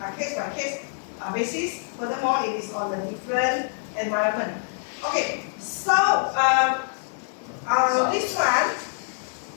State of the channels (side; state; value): right; silent; 59 dB below the other